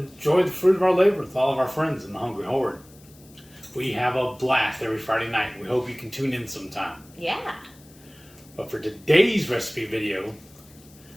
enjoy the fruit of our labor with all of our friends in the Hungry Horde. We have a blast every Friday night. We hope you can tune in sometime. Yeah. But for today's recipe video,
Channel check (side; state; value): left; noise; hiss, 25 dB below the sound